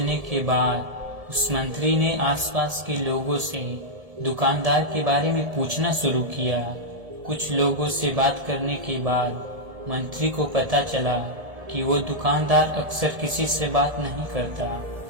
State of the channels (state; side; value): late; left; 1.7 ms